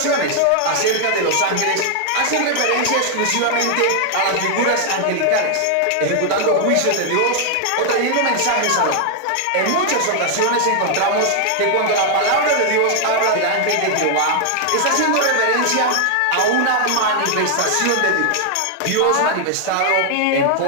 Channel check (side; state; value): both; different; correlation 0.00